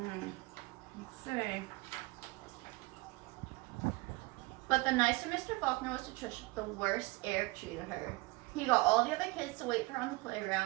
Let's see. But the nicer Mr. Faulkner was to Trisha, the worse Eric treated her. He got all the other kids to wait for her on the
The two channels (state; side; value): quieter; left; 23.2 dB